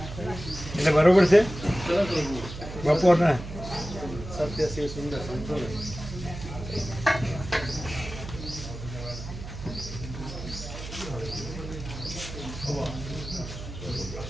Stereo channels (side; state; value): right; noise; hum, 10 dB below the sound